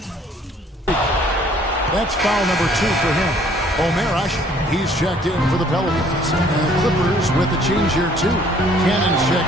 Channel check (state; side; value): normal; both; correlation 0.59